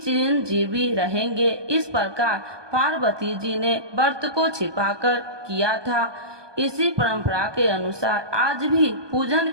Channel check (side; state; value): left; late; 1.2 ms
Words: रहेंगे। इस प्रकार पार्वती जी ने व्रत को छिपाकर किया था। इसी परंपरा के अनुसार आज भी पूजन